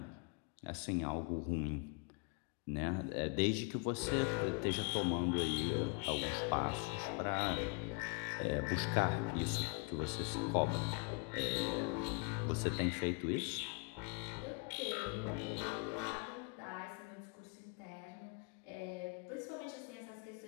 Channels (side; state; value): right; quieter; 33.9 dB